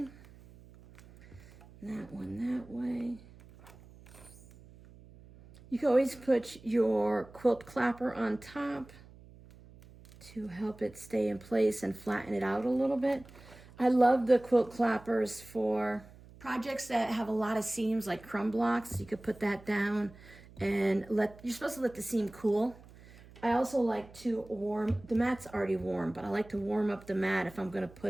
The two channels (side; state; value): right; noise; hum, 22 dB below the sound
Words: That one that way. You can always put your quilt clapper on top to help it stay in place and flatten it out a little bit. I love the quilt clappers for projects that have a lot of seams, like crumb blocks. You could put that down and you're supposed to let the seam cool. I also like to warm, the mat's already warm, but I like to warm up the mat if I'm gonna